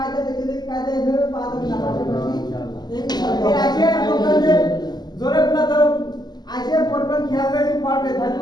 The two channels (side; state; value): right; late; 0.20 ms